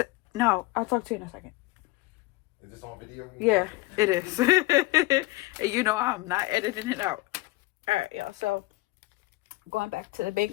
no, I'll talk to you in a second. Is this on video? Yeah, it is. And you know I'm not editing it out. Alright, y'all, so going back to the bank,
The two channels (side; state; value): right; quieter; 20.8 dB